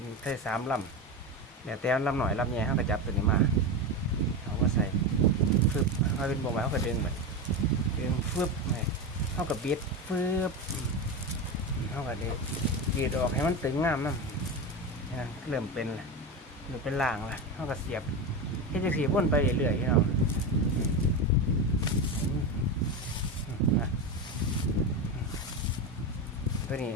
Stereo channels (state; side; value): normal; both; correlation 0.19